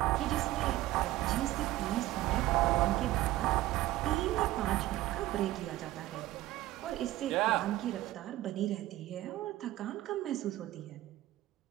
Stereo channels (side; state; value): left; quieter; 16.1 dB